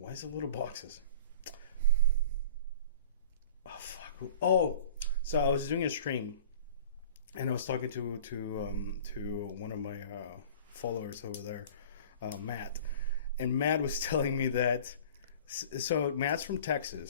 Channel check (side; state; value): both; inverted; correlation -0.42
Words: is it little boxes? Oh fuck. Oh, so I was doing a stream and I was talking to one of my followers over there, Matt. And Matt was telling me that so Matt's from